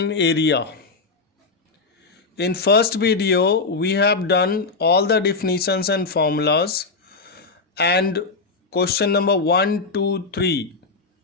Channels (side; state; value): right; quieter; 4.1 dB